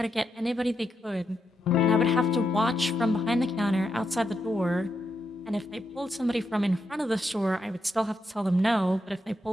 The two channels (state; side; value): normal; both; correlation 0.83